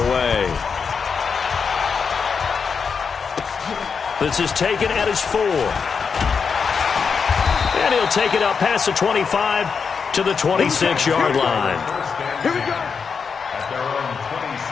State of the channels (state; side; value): quieter; right; 5.8 dB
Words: This is taken at his 4. And he'll take it up past the 25 to the 26-yard line. Here we go. At their own